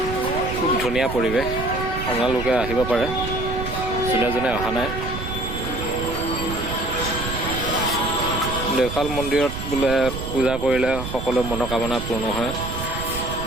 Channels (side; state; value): right; noise; rumble, 7 dB below the sound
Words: খুব ধুনীয়া পৰিৱেশ, আপোনালোকে আহিব পাৰে যোনে অহা নাই। দেওশাল মন্দিৰত বোলে পূজা কৰিলে সকলো মনোকামনা পূৰ্ণ হয়,